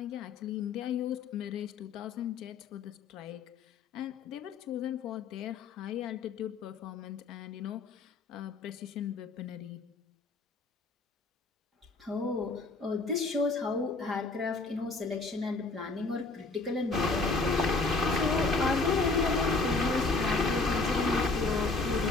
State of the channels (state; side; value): quieter; right; 3.8 dB